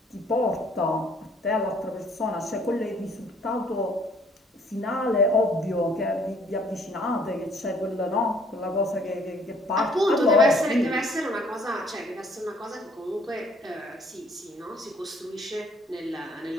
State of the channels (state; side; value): normal; both; correlation 0.60